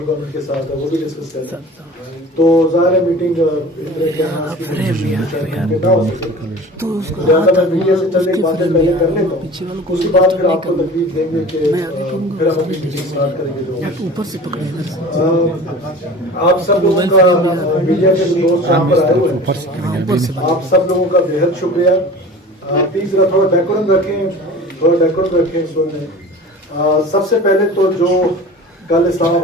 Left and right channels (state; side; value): normal; both; correlation 0.39